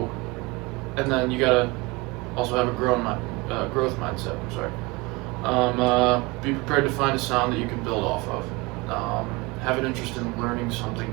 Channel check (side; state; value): left; quieter; 24.2 dB